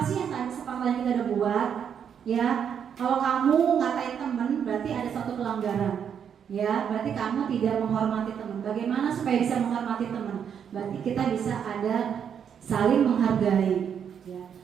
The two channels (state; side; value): quieter; left; 7.9 dB